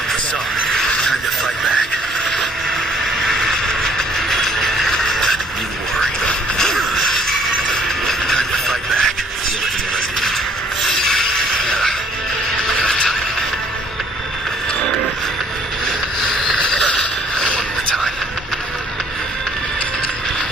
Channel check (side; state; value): both; normal; correlation 0.62